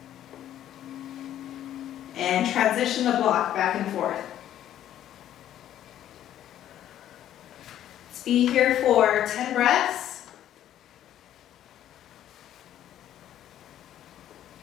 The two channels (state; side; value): quieter; right; 11.6 dB